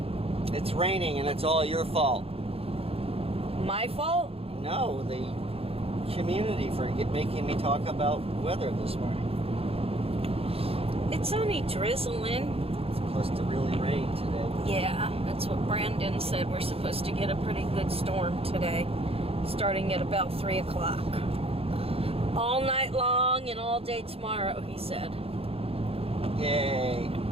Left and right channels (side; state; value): left; late; 0.28 ms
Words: It's raining and it's all your fault. My fault? No, the community for making me talk about weather this morning. It's only drizzling. It's supposed to really rain today. Yeah, that's what Brandon said. We're supposed to get a pretty good storm today, starting at about 3 o'clock. All night long and all day tomorrow, he said. Yay.